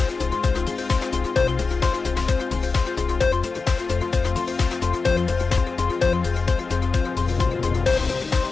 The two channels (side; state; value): right; quieter; 4.1 dB